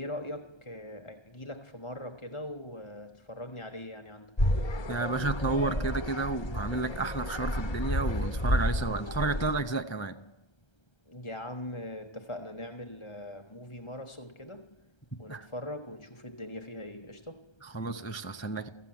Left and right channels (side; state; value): right; late; 1.3 ms